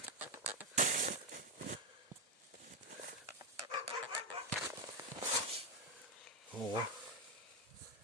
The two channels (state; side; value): normal; both; correlation 0.05